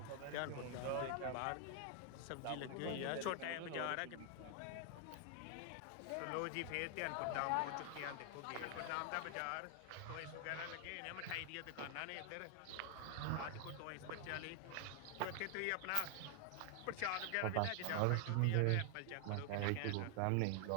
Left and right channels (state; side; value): different; both; correlation 0.00